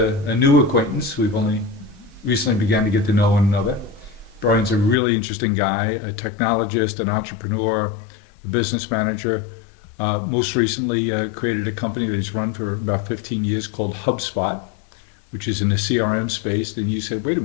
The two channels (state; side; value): drops out; right; at 5.0 s